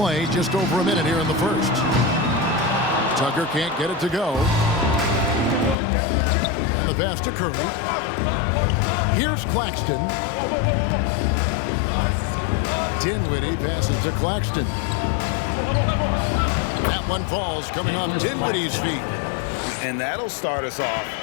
just over a minute here in the first. Tucker can't get it to go. And the pass to Curry. Here's Claxton. Dinwiddie passes to Claxton. That one falls, coming off Dinwiddie's feet. And that'll start us off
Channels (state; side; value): drops out; right; at 5.8 s